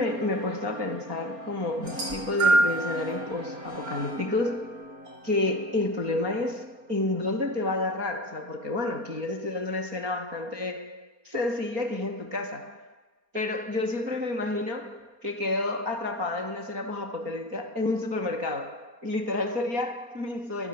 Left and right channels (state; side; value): late; left; 4.3 ms